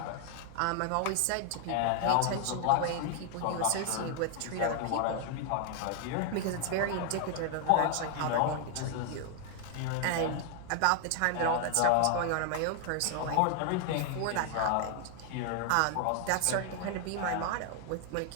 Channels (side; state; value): both; different; correlation 0.00